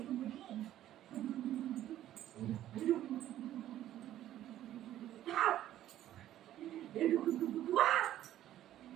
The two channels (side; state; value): left; quieter; 12.7 dB